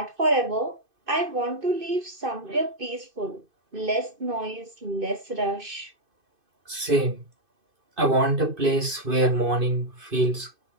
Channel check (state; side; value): late; left; 2.5 ms